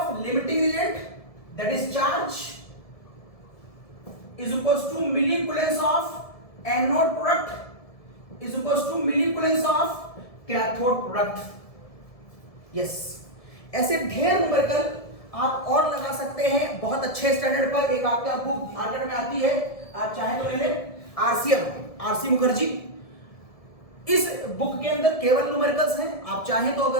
limiting reagent that is charge is equals to milliculence of anode product is equals to milliculence of cathode product। yes, ऐसे ढेर न्यूमेरिकल आप और लगा सकते हैं बहुत अच्छे स्टैंडर्ड पर। एक आपका बुक मार्केट में आती है, आप चाहे तो ले लें, आरसी मुखर्जी। इस बुक के अंदर केवल न्यूमेरिकल्स हैं। आप चाहें तो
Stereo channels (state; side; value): late; right; 1.7 ms